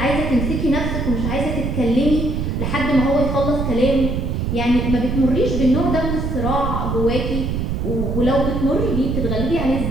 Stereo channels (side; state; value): right; noise; rumble, 1 dB below the sound